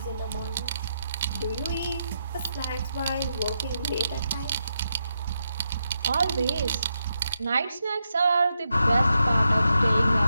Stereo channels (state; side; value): inverted; both; correlation -0.83